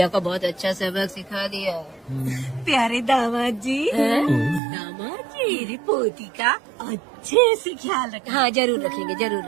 को बहुत अच्छा सबक सिखा दिया। प्यारे दामाद जी, दामाद जी, मेरी पोती का अच्छे से ख्याल रखना। हाँ जरूर रखेंगे, जरूर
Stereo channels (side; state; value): left; drops out; at 4.6 s